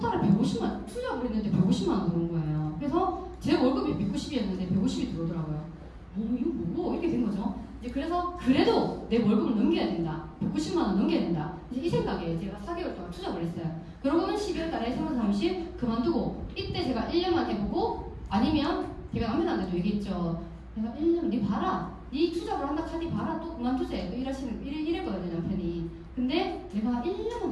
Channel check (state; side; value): identical; both; correlation 1.00